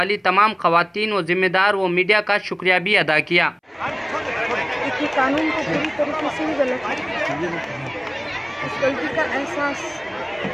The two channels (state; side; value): identical; both; correlation 1.00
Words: तमाम ख़वातीन व ज़िम्मेदार व मीडिया का शुक्रिया भी अदा किया। ये कानून को पूरी तरीके से ही गलत है। इस गलती का एहसास